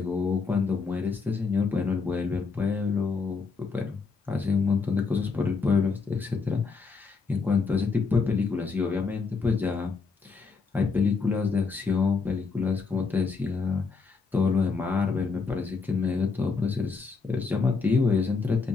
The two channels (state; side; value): quieter; right; 4.7 dB